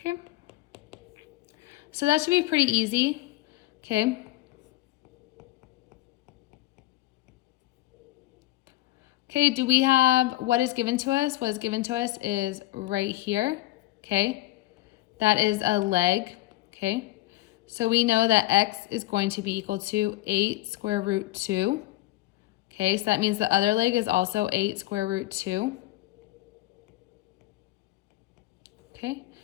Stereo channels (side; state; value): right; quieter; 17.4 dB